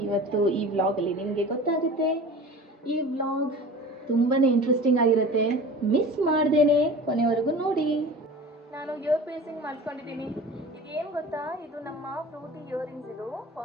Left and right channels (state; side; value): normal; both; correlation 0.38